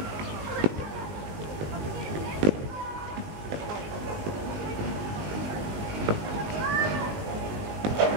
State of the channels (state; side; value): late; left; 19 ms